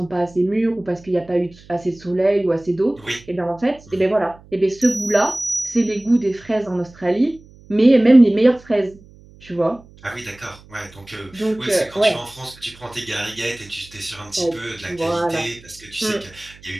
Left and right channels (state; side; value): noise; right; hum, 24 dB below the sound